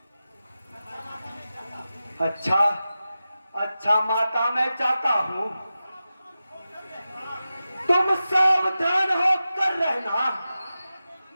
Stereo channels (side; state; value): both; inverted; correlation -0.93